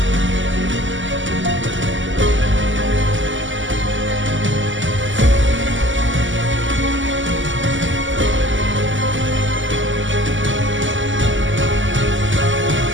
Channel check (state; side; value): late; left; 0.55 ms